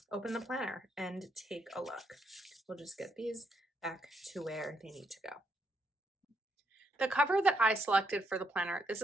open the planner and take a look. We'll just get these back to where they need to go. The cover that I selected for the planner, this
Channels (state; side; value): normal; both; correlation 0.76